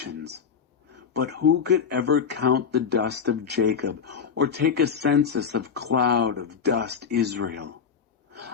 But who could ever count the dust of Jacob or take a census of cloud of dust Israel?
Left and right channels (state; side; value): quieter; right; 6.6 dB